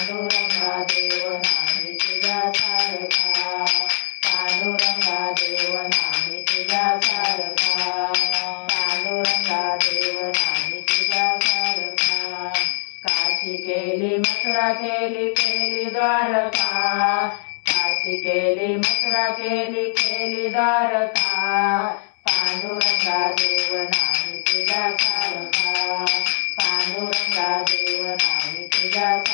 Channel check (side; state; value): right; silent; 62 dB below the other